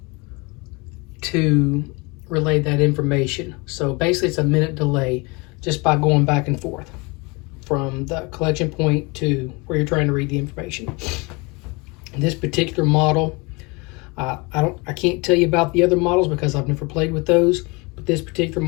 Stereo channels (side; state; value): right; quieter; 27.6 dB